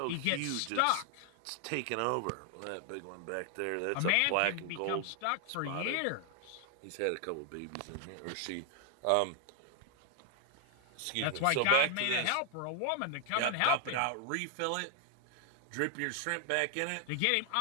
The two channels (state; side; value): different; both; correlation 0.00